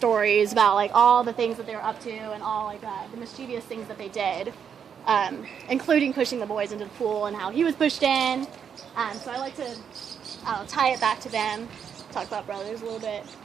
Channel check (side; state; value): left; quieter; 7.6 dB